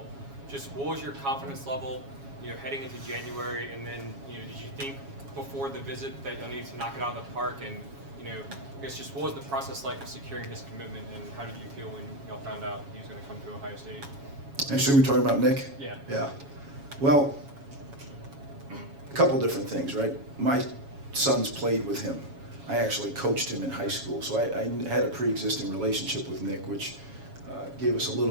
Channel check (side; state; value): left; late; 7.2 ms